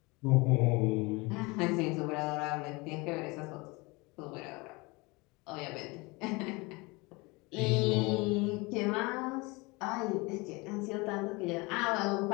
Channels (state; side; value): quieter; right; 25.5 dB